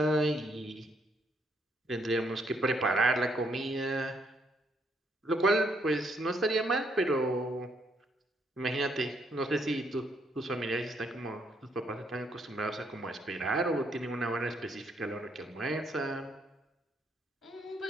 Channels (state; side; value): normal; both; correlation 0.72